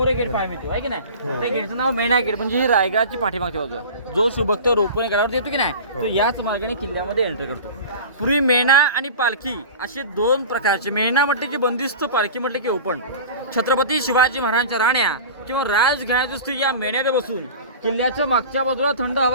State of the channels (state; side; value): inverted; both; correlation -0.36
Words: एक गेट पाहायला मिळतो आहे की नाही. त्या गेटचं नाव मेणा गेट म्हणजे ही रायगडाची पाठीमागची बाजू आहे. जो शुभक्त रोपणे गडावर येतो की नाही तो याच मार्गाने किल्ल्यामध्ये एंटर करतो. पूर्वी मेणा आणि पालखी असे दोन प्रकारचे, मेणा म्हटले की बंदिस्त, पालखी म्हटले की ओपन. छत्रपती शिवाजी महाराजांच्या राण्या किंवा राजघराण्याची स्त्री या मेण्यात बसून किल्ल्याच्या मागच्या बाजूला थंड